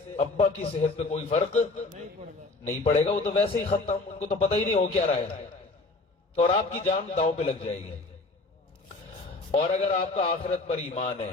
ابا کی صحت پہ کوئی فرق نہیں پڑے گا۔ وہ تو ویسے ہی ختم، ان کو تو پتہ ہی نہیں ہو کیا رہا ہے، اور آپ کی جان داؤ پہ لگ جائے گی۔ اور اگر آپ کا آخرت پر ایمان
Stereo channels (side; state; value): right; quieter; 3.3 dB